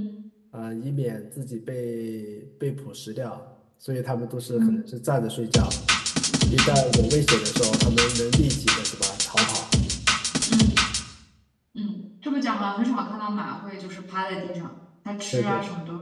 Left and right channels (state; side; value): identical; both; correlation 1.00